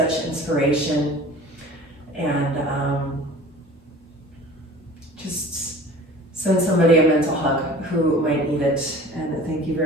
inspiration, and just send somebody a mental hug who might need it. And thank you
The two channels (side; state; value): both; normal; correlation 0.43